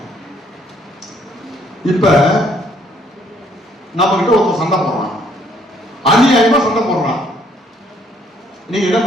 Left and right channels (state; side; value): normal; both; correlation 0.66